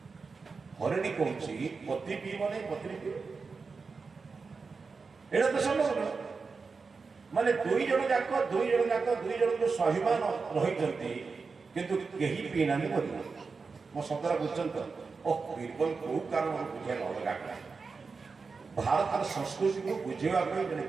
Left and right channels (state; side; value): quieter; left; 4.7 dB